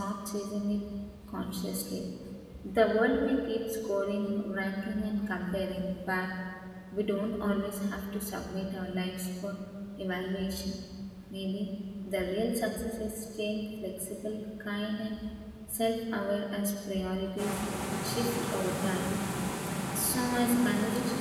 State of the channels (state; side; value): identical; both; correlation 1.00